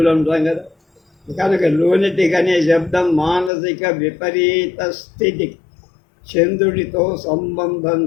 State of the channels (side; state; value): right; drops out; at 3.5 s